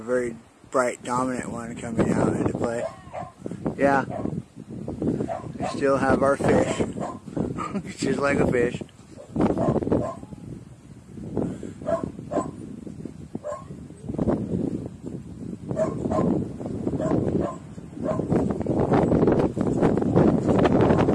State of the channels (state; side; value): identical; both; correlation 1.00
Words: bright, dominant one coming out into play. Yeah. We still have our fish. It's just like a fish.